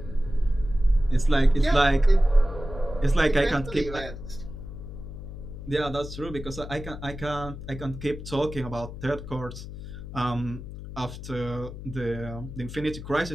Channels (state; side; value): noise; left; hum, 11 dB below the sound